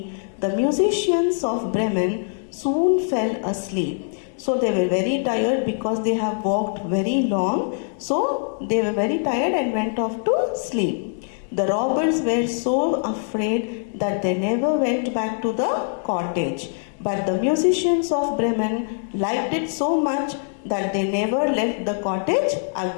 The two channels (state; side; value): silent; right; 63 dB below the other